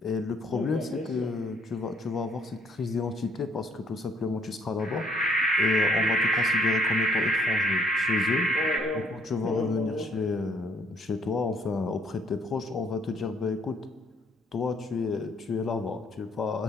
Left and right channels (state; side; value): normal; both; correlation 0.65